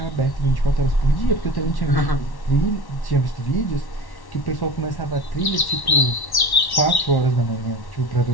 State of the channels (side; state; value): right; late; 1.1 ms